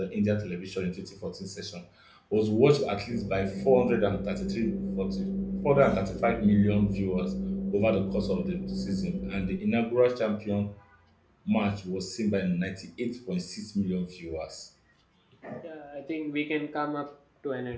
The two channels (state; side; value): identical; both; correlation 1.00